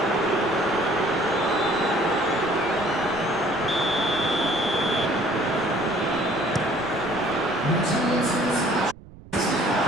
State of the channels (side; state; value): right; noise; rumble, 18 dB below the sound